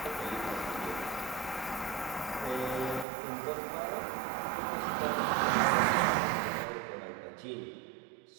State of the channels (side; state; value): left; drops out; at 3.1 s